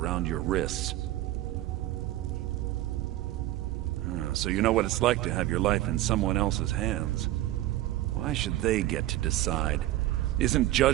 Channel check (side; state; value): left; quieter; 15.2 dB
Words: your wrists? So you know what it's like to have your life in someone else's hands. Why should they get to decide? Isn't